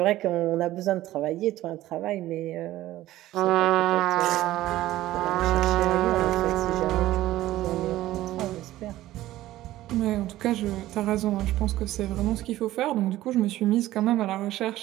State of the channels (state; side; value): quieter; left; 15.4 dB